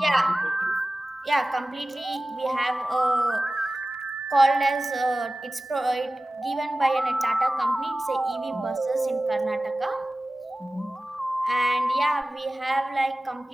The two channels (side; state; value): both; normal; correlation 0.96